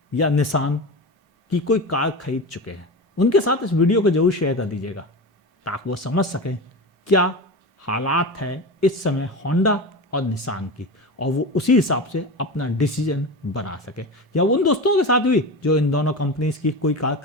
या निसान की कोई कार खरीद चुके हैं, उनके साथ इस वीडियो को जरूर शेयर कर दीजिएगा, ताकि वो समझ सकें क्या हालात है इस समय होंडा और निसान की, और वो उसी हिसाब से अपना डिसीजन बना सके। या उन दोस्तों के साथ भी जो इन दोनों कंपनीज की कोई कार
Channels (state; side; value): normal; both; correlation 0.25